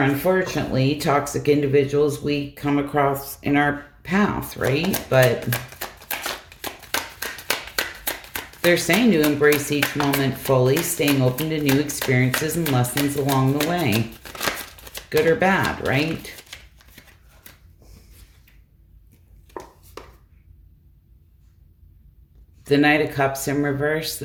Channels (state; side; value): identical; both; correlation 1.00